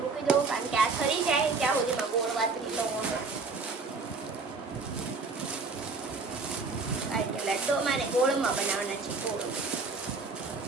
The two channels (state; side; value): quieter; left; 4.1 dB